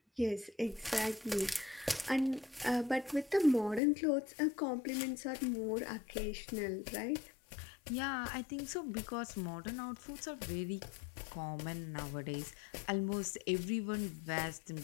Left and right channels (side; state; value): right; drops out; at 3.8 s